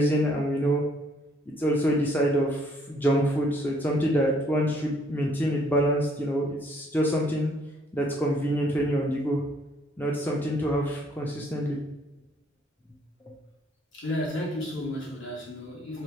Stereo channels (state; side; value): normal; both; correlation 0.65